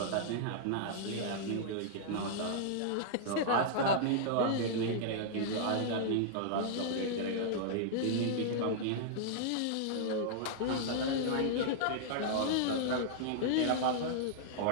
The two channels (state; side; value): different; both; correlation -0.02